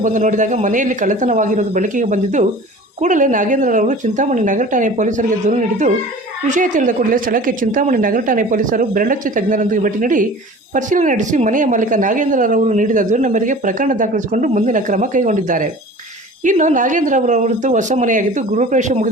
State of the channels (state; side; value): normal; both; correlation 0.41